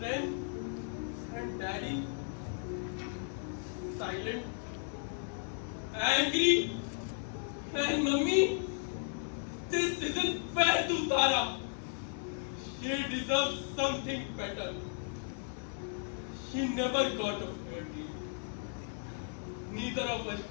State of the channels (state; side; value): silent; right; 54 dB below the other